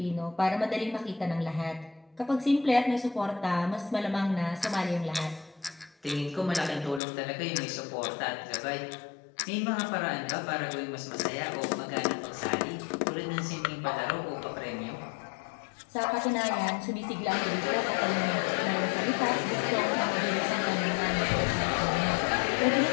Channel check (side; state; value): right; drops out; at 7.0 s